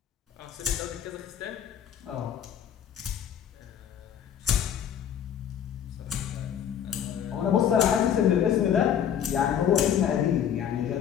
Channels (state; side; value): quieter; right; 9.1 dB